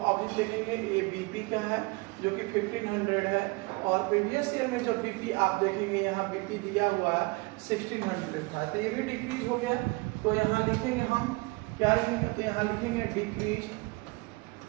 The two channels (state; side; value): quieter; left; 25.8 dB